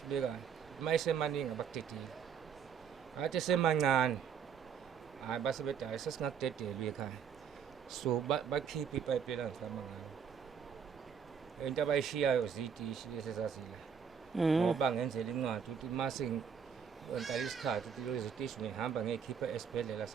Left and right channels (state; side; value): quieter; left; 7.2 dB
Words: uma isemaningi abakudedile athi esemancane hayi base bethi hayi sesingakudedeli ekhaya. So bakhipha ipayipi elangifama ngayo into abayishiyayo zitishi lesezazila ngoba ngenzela incwadi ukuthi mase ngentala isikhathi ukuthi lezi zitishi ngihamba ngiyikhipha esibhedlela